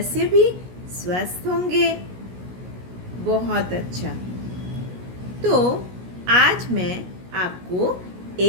भी स्वस्थ होंगे। बहुत अच्छा। तो आज मैं आपको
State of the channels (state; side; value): late; left; 17 ms